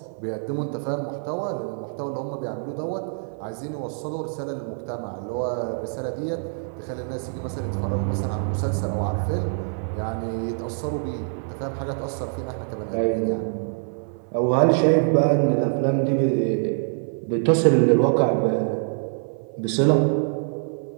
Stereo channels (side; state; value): left; silent; 61 dB below the other